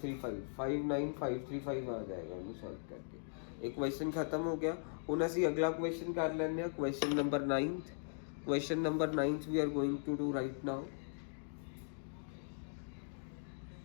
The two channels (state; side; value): silent; right; digital silence